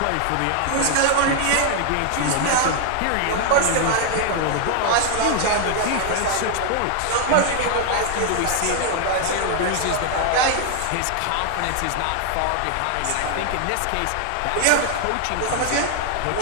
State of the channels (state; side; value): different; both; correlation 0.00